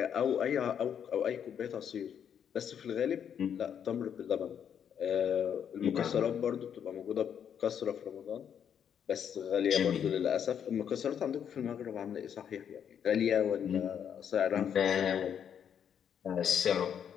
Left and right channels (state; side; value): quieter; right; 8.4 dB